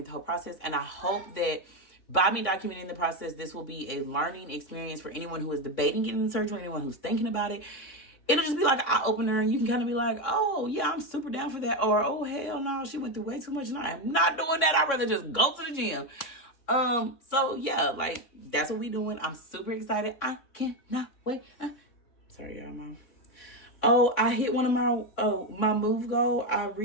the whole process. And I hope that by me documenting the process, this will be a learning experience for anyone who is debating getting the surgery, anyone who's thinking about it. It'll just be like an eye-opener, and you can kind of be like, oh, yeah, I'm super down for that. Or, oh, hell no, she went through way too much, and I am not doing that. I'd rather just go to the gym. So, yeah, like, that's what we doing. I'm super excited. I cannot wait. Sorry, y'all, Mom. Oh, I hit one of my move goal. I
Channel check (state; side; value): late; right; 3.6 ms